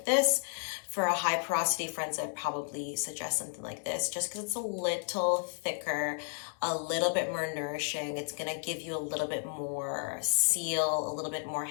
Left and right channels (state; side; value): silent; right; digital silence